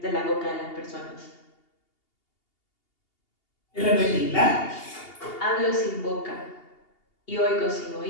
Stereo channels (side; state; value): right; late; 2.8 ms